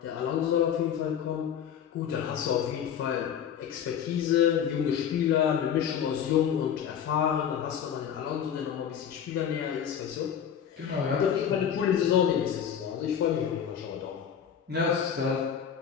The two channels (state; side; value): quieter; right; 8.5 dB